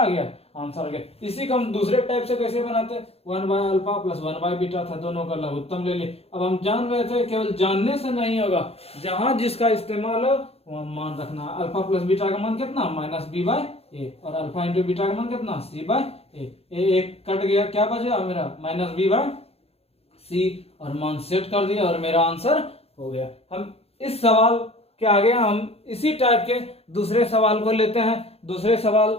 गया, आंसर आ गया। इसी को हम दूसरे टाइप से कैसे बनाते, 1 by alpha plus 1 by beta था, दोनों का लघुत्तम ले लिए। अब हम जान रहे थे केवल जानने से नहीं होगा, जहां जिसका इस्तेमाल हो वहां मान रखना। अल्फा प्लस बीटा का मान कितना -b बाय ए, और अल्फा इंटू बीटा का मान कितना c बाय ए। एक कट गया, क्या बचा मेरा -b बाय सी, और मान सेट कर दिया और मेरा आंसर हो गया। हम इस सवाल के आगे हम इसी टाइप के दूसरे सवाल को लेते हैं। दूसरे सवाल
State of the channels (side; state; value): right; late; 0.29 ms